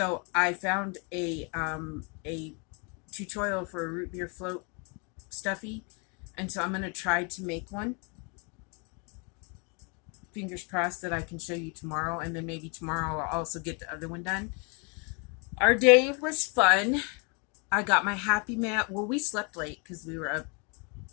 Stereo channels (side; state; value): right; quieter; 34.3 dB